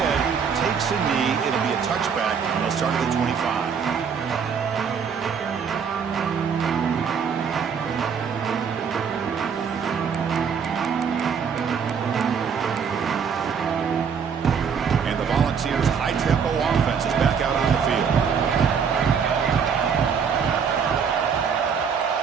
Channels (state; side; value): quieter; left; 6.7 dB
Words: takes a knee. It'll be a touchback. They'll start at the 25. And the Volunteers' high-tempo offense is back out on the field.